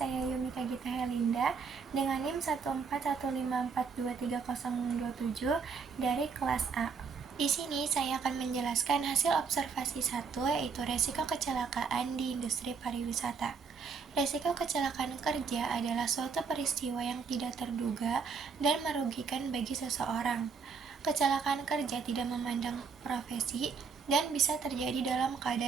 Yumika Gita Helinda dengan NIM 14154230027 dari kelas A. Di sini saya akan menjelaskan hasil observasi 1, yaitu resiko kecelakaan di industri pariwisata. Resiko kecelakaan kerja adalah suatu peristiwa yang tidak terduga dan merugikan bagi seseorang. Kecelakaan kerja tidak memandang profesi dan bisa terjadi dalam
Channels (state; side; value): quieter; left; 5.4 dB